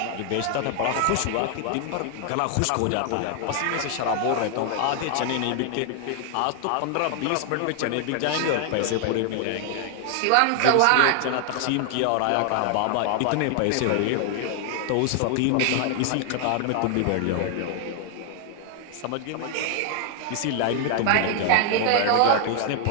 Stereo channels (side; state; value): both; different; correlation 0.00